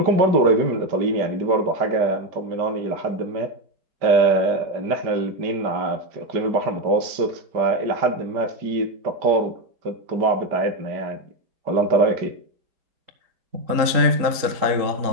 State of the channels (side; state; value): left; late; 3.9 ms